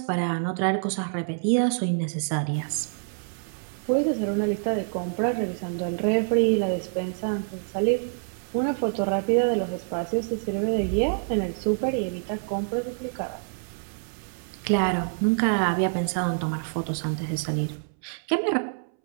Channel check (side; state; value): left; silent; 60 dB below the other